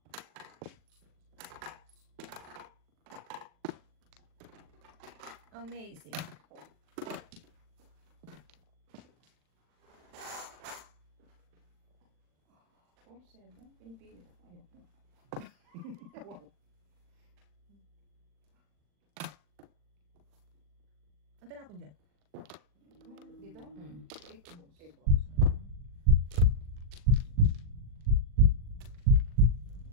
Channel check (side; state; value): left; late; 40 ms